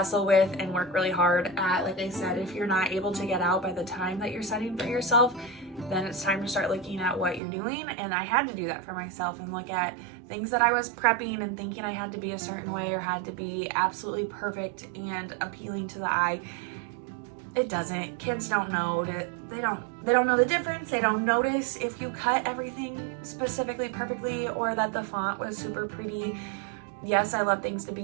with and work really hard at. Like I said, if you're not able to get out by the time that you're setting for yourself, then it's time to start looking at what you're doing. And I had to do that for myself and look at things that I was prepping and thinking I had to be a certain way or had to be absolutely perfect and appealing to the eye. It doesn't. Kids don't know that they don't know the difference. They don't notice if you cut everything specifically perfectly or that the font was super pretty. Yes, I love things to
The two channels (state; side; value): drops out; left; at 7.4 s